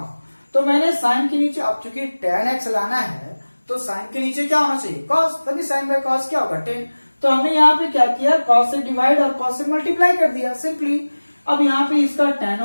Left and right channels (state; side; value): inverted; both; correlation -1.00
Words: तो मैंने साइन के नीचे, अब चूंकि tan x लाना है तो साइन के नीचे क्या होना चाहिए, cos, तभी साइन बाय cos क्या होगा 10। तो हमने यहाँ पे क्या किया, cos से डिवाइड और cos से मल्टीप्लाई कर दिया सिंपली। अब यहाँ पे इसका tan